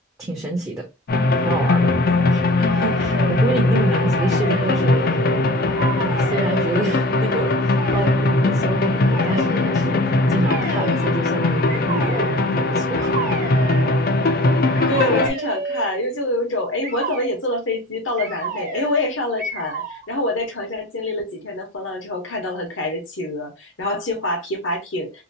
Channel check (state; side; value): normal; both; correlation 0.40